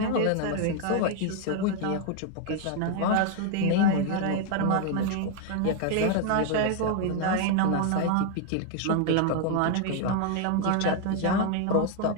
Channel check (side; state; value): both; different; correlation 0.01